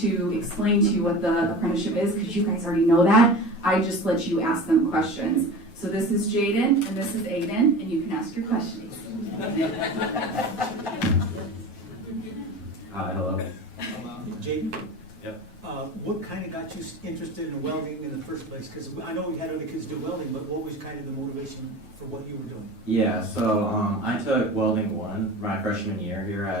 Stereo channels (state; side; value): normal; both; correlation 0.34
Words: explain to you what the apprenticeship is, because you guys already know that, I just let you ask them questions. So this is Jaden, and this is Aiden, and you can ask your questions. Hi, hello. Jake? Yep. What kind of got you interested in welding in the first place? Because I know we had other kids do welding, but what was kind of the motivation for what you were doing? Yeah, so I took welding 1 my freshman year here